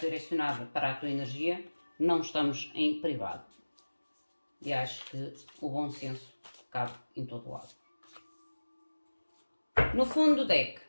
para a tua energia, não estamos em privado. E acho que o bom senso cabe em todo lado. No fundo do deck,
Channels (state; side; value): inverted; both; correlation -1.00